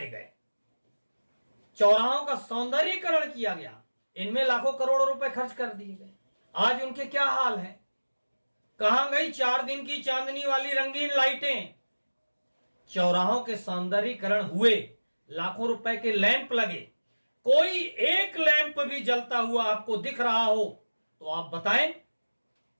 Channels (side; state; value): both; inverted; correlation -1.00